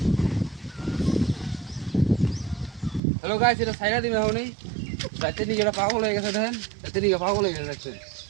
হ্যালো গাইস এটা সাইরা দিমে হওনি রাতে নিয়ে এটা পাগল হয়ে গেছে দেখেন রাতে নিয়ে পাগল হয়ে গেছে দেখছেন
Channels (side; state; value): left; drops out; at 3.0 s